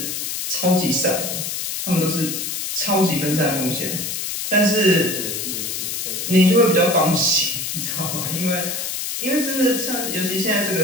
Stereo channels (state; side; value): noise; left; hiss, 3 dB below the sound